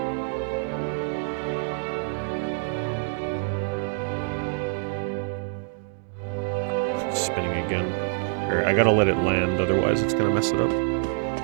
It's spinning again. I gotta let it land, otherwise it's gonna mess it up.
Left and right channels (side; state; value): left; silent; digital silence